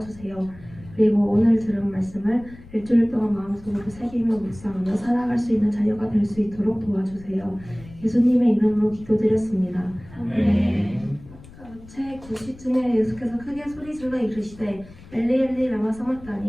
그리고 오늘 들은 말씀을 일주일 동안 마음속으로 새기며 묵상하며 살아갈 수 있는 자녀가 될 수 있도록 도와주세요. 예수님의 이름으로 기도드렸습니다. 아멘. 제 90쯤에 예수께서 크게 소리질러 이르시되 엘리 엘리 라마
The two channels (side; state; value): left; noise; rumble, 20 dB below the sound